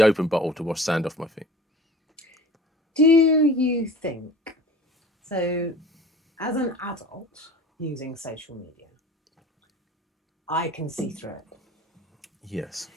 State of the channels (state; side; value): normal; both; correlation 0.42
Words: open bottle to wash sand off my feet. Do you think, so as an adult using social media, I can see through it? Yes.